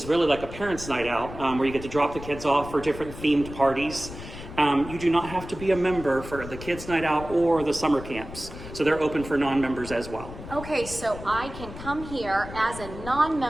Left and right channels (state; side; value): noise; left; rumble, 12 dB below the sound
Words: really like a parents' night out, where you get to drop the kids off for different themed parties. You do not have to be a member for the Kids Night Out or the summer camps. So they're open for non-members as well. Okay, so I can come here as a